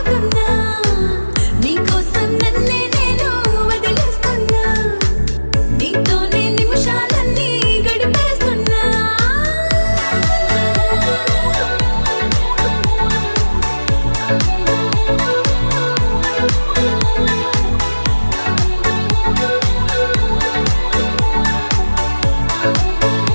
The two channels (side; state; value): both; inverted; correlation -1.00